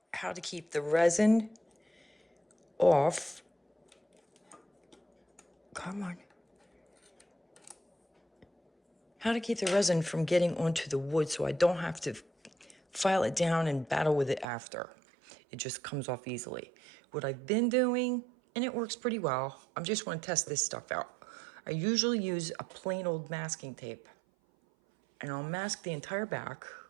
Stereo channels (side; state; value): left; drops out; at 14.5 s